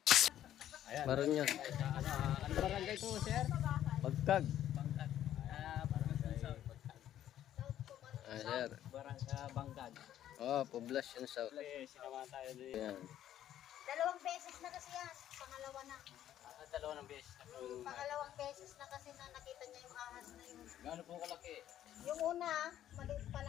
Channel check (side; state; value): right; quieter; 11.6 dB